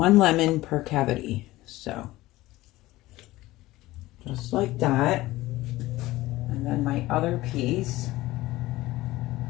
lemon per cavity. So, just like that. And then my other piece,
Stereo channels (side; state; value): right; quieter; 17.9 dB